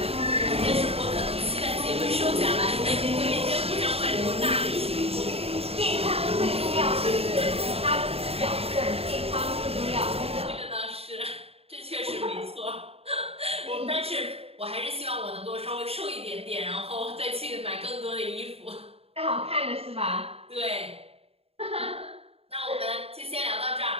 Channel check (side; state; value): left; late; 0.29 ms